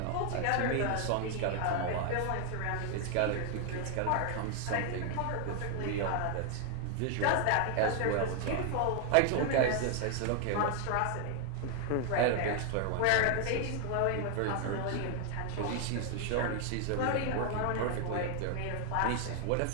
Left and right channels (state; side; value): different; both; correlation 0.00